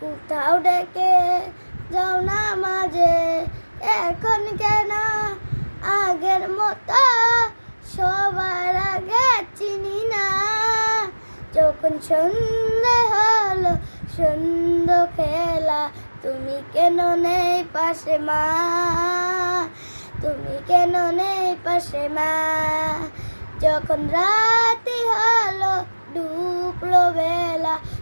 ডেকে যাও না মাঝে, এখন কেন আগের মতো সবার আগে চিনি না। যখন সন্ধে হলো সন্ধ্যা খেলা, তুমি কেন নেই পাশে মা, তুমি কেন নেই পাশে মা। যখন রাতি হলো ডুবলো বেলা,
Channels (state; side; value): inverted; both; correlation -1.00